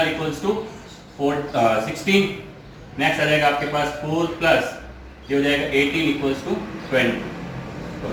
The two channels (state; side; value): identical; both; correlation 1.00